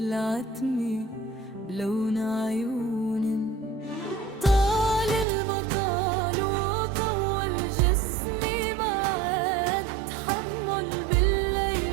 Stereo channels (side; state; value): left; drops out; at 5.2 s